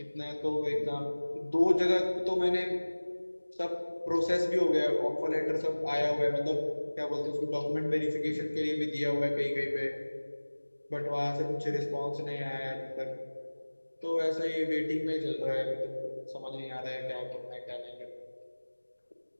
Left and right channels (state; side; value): inverted; both; correlation -1.00